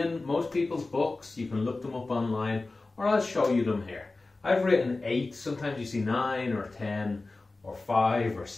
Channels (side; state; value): right; quieter; 3.4 dB